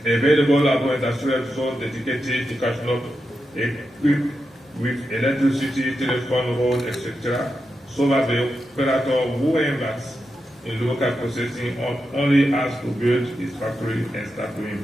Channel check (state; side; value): normal; both; correlation 0.88